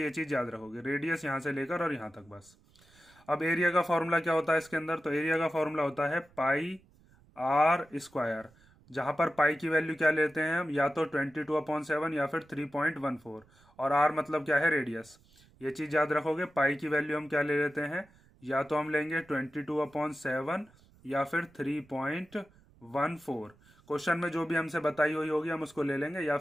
चीज याद रखोगे, रेडियस यहां से लेकर और यहां तक बस। अब एरिया का फॉर्मूला क्या होता है इसके अंदर, तो एरिया का फॉर्मूला होता है पाई आर स्क्वायर। जहां पर पाई की वैल्यू क्या लेते हैं हम, या तो 22/7 या फिर 3.14, और आर मतलब क्या है, रेडियस। ये चीज याद रखोगे, पाई की वैल्यू हम क्या ले लेते हैं, या तो हम लेंगे 22/7 या फिर 3.14। क्वेश्चन में जो भी हमसे बताई हुई होगी हम उसको ले लेंगे, या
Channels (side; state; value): right; noise; rumble, 29 dB below the sound